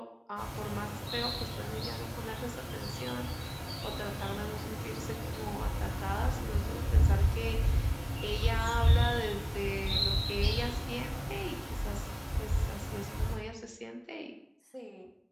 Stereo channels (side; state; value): both; identical; correlation 1.00